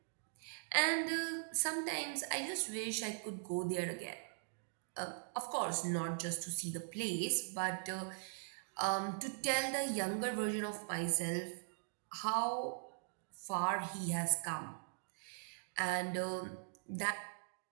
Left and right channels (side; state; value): left; silent; digital silence